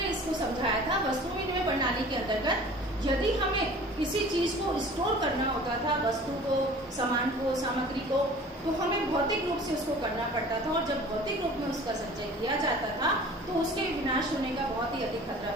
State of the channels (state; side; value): normal; both; correlation 0.45